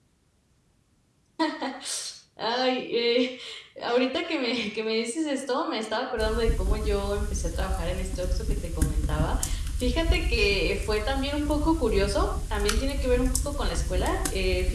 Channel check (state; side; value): identical; both; correlation 1.00